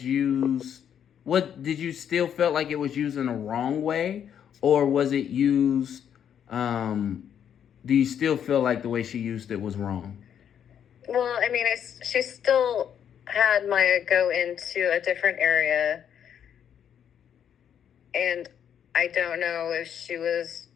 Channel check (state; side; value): quieter; right; 8.9 dB